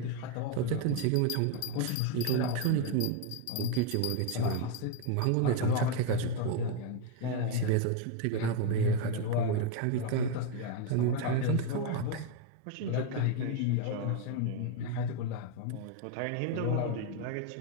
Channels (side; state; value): both; different; correlation 0.02